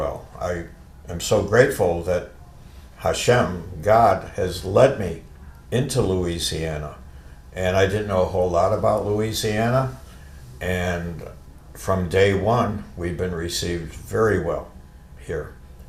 I am so grateful that Hashem, God, has led me into Louisiana. And I didn't know a whole lot about Louisiana. And from day one, we've been received very well here.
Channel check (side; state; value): both; identical; correlation 1.00